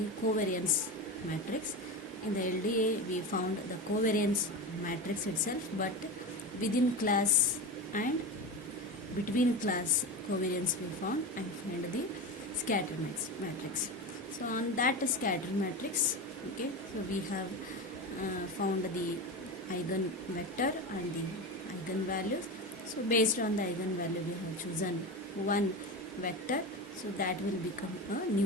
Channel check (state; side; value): normal; both; correlation 0.22